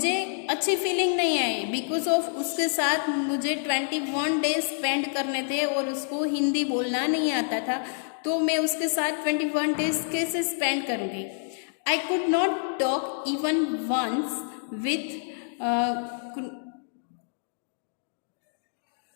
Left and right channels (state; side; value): silent; right; digital silence